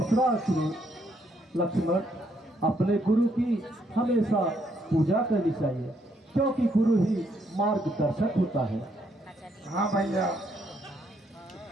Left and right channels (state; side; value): normal; both; correlation 0.73